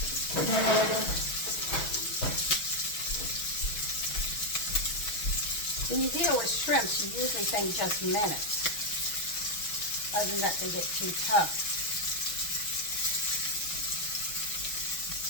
When you deal with shrimps, you usually think just minutes. Other than that, they get too tough.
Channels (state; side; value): late; right; 6.2 ms